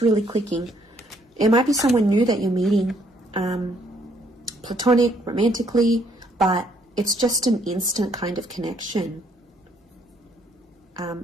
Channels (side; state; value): both; normal; correlation 0.67